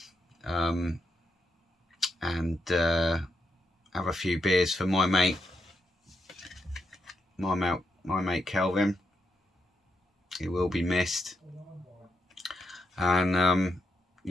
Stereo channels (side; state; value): both; normal; correlation 0.83